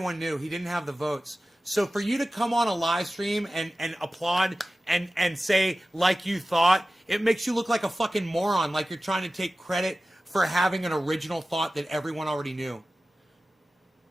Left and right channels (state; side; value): normal; both; correlation 0.96